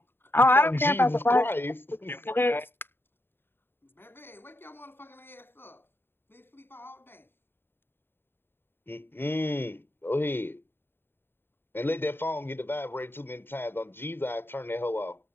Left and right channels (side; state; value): right; late; 0.10 ms